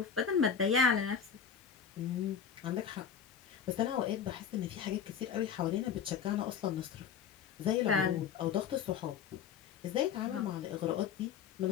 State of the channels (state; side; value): quieter; right; 7.4 dB